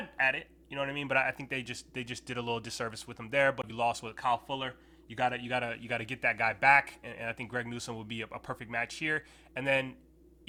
at it, you know what I mean. But I think they just did a little disservice with him there. But you lost with Kyle Fuller. You gotta get that guy back, and I think Greg Newsome would be a perfect match here. And then,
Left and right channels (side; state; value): both; identical; correlation 1.00